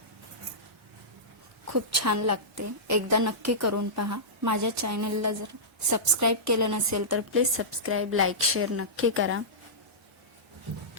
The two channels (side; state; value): both; normal; correlation -0.15